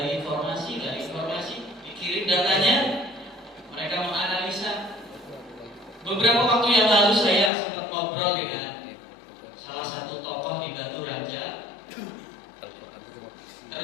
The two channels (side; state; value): right; drops out; at 7.5 s